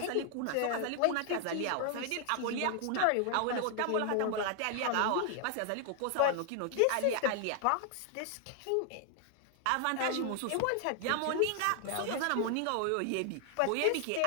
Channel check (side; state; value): both; different; correlation 0.00